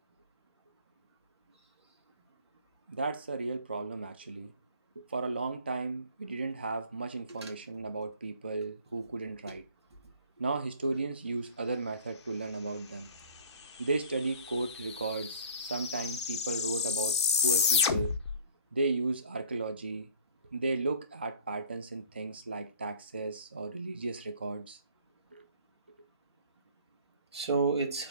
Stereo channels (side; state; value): both; inverted; correlation -0.49